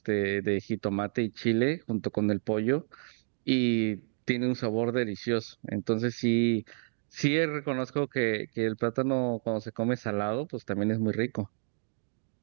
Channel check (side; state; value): left; silent; digital silence